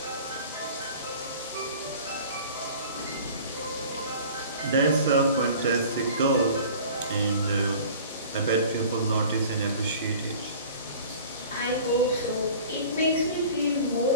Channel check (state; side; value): inverted; both; correlation -0.44